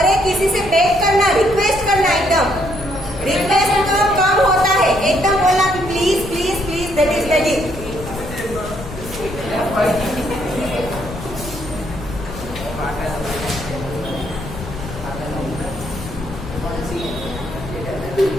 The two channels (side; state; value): left; noise; rumble, 12 dB below the sound